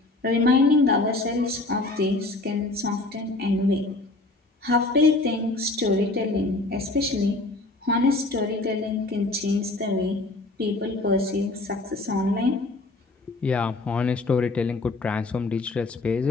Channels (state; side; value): quieter; right; 3.0 dB